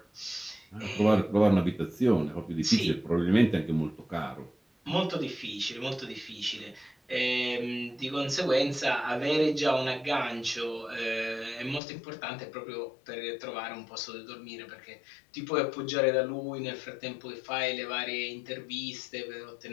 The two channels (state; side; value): drops out; right; at 11.8 s